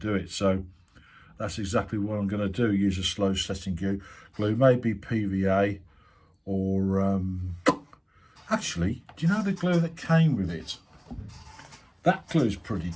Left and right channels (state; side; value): identical; both; correlation 1.00